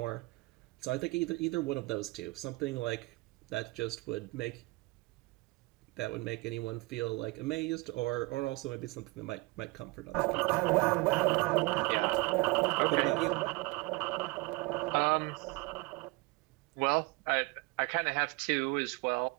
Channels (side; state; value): left; quieter; 24.8 dB